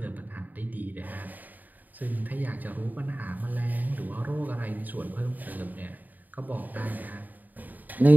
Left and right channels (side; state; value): left; late; 0.084 ms